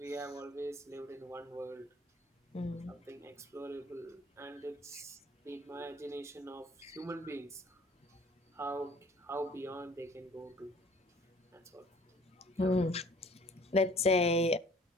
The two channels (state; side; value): normal; both; correlation 0.53